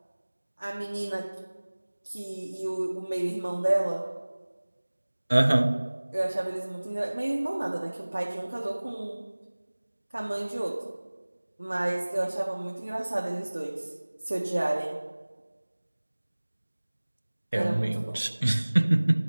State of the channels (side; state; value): both; inverted; correlation -1.00